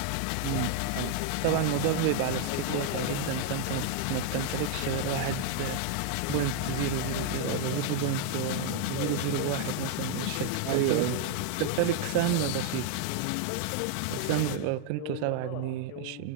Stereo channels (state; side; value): different; both; correlation 0.00